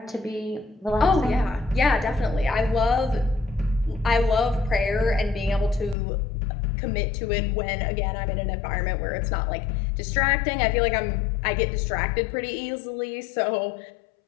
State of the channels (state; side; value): drops out; right; at 6.0 s